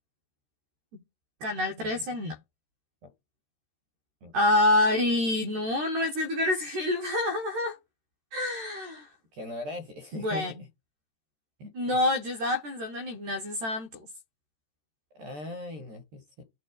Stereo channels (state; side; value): late; left; 13 ms